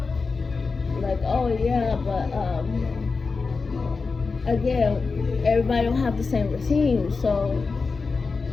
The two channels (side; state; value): right; quieter; 4.4 dB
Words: Like, oh yeah, but again, everybody don't have the same routine, so,